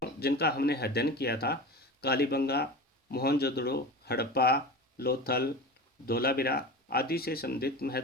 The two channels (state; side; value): normal; both; correlation 0.29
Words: जिनका हमने अध्ययन किया था, कालीबंगा, मोहनजोदड़ो, हड़प्पा, लोथल, धोलावीरा आदि से संबंधित